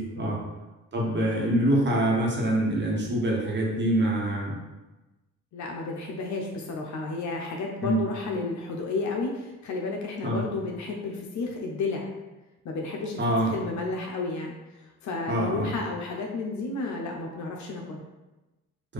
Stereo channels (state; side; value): normal; both; correlation 0.40